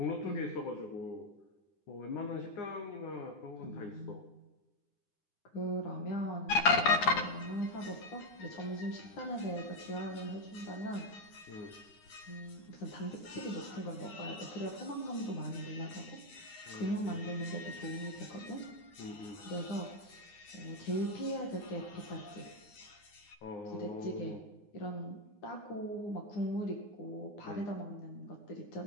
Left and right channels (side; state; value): right; late; 9.7 ms